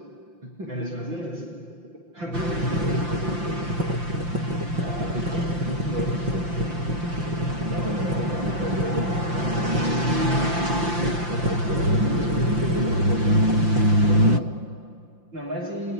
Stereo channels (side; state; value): left; late; 5.8 ms